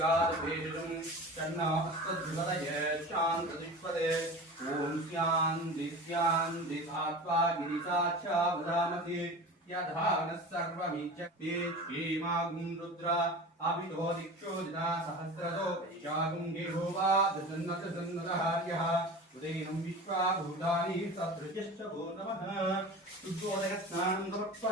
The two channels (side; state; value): both; normal; correlation 0.34